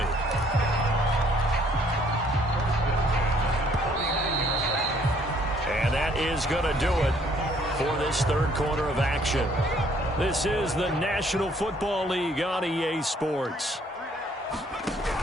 And that is going to do it for this 3rd quarter of action. This is the National Football League on EA Sports.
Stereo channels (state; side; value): normal; both; correlation 0.63